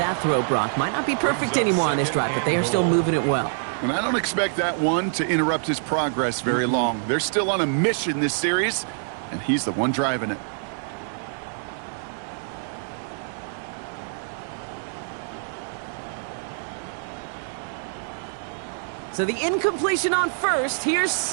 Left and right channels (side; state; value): left; silent; 62 dB below the other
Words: throw, Brock. Might not be perfect anymore on this drive, but they are still moving it well. And I don't expect that one to interrupt his progress very long. They're still on a mission this series, and he's the one driving it. So the incompletion on 1st. Here's